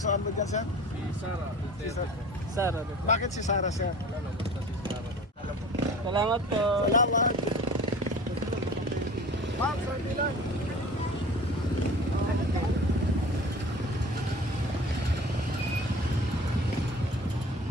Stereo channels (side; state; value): both; normal; correlation 0.41